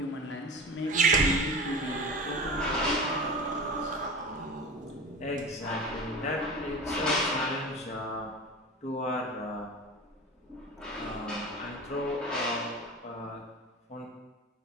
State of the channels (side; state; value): both; normal; correlation 0.32